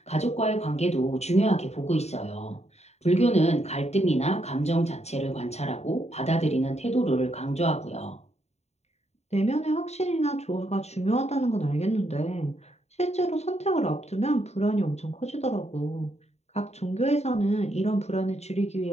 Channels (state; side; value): late; right; 0.32 ms